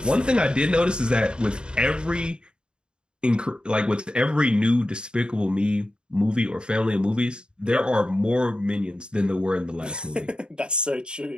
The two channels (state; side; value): late; left; 0.051 ms